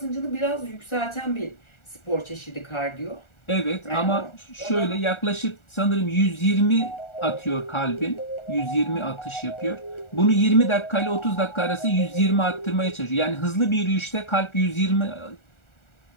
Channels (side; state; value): right; late; 1.4 ms